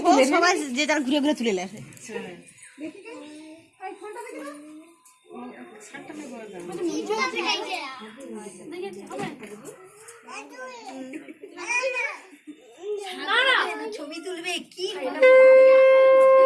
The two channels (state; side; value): identical; both; correlation 1.00